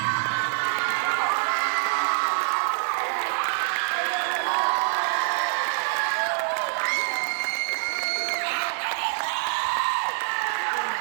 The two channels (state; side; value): silent; left; digital silence